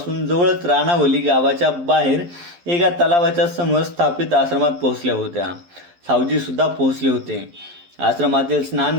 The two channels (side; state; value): left; late; 11 ms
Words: जवळच राणावली गावाच्या बाहेर एका तलावाच्या समोर स्थापित आश्रमात पोहोचल्या होत्या. सावजी सुद्धा पोहोचले होते. आश्रमातील